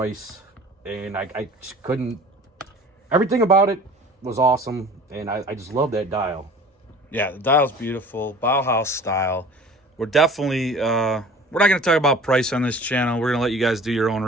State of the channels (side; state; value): both; normal; correlation 0.45